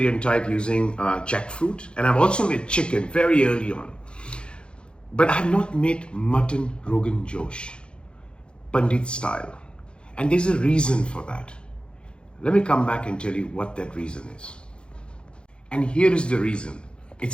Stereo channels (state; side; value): late; right; 0.055 ms